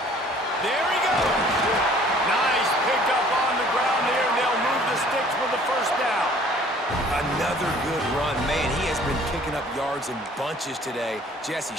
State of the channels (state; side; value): normal; both; correlation 0.54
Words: There he goes. Nice pickup on the ground there, and they'll move the sticks for the 1st down. Another good run. Man, he has been picking up yards in bunches today. Jesse